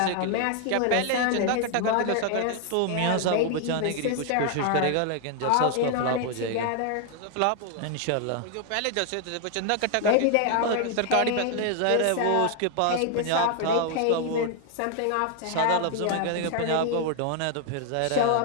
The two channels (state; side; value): different; both; correlation 0.00